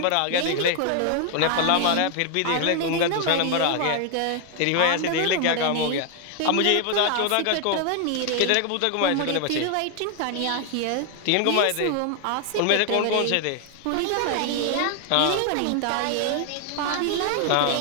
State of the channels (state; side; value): different; both; correlation 0.00